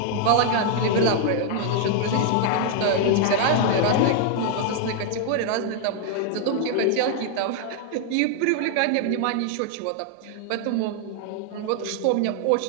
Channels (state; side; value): different; both; correlation 0.00